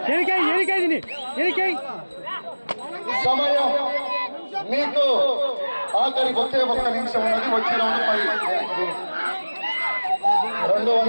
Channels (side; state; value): both; inverted; correlation -1.00